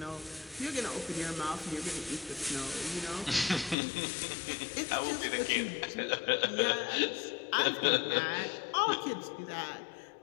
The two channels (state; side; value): drops out; right; at 3.8 s